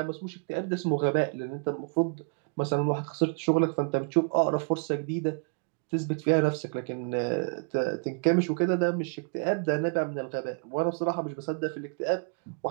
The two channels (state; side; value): quieter; left; 39.9 dB